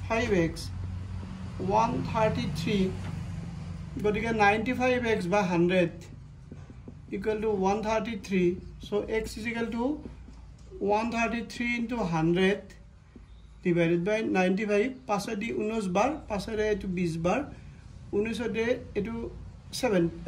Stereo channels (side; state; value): both; identical; correlation 1.00